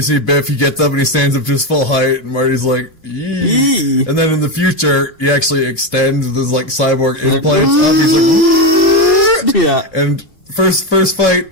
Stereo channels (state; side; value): late; right; 2.7 ms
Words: see Biff, he gets up and he stands up to his full height, and Marty's like, Yee. And then in the future, he actually extends this like cyborg. Like, yeah. And first fight,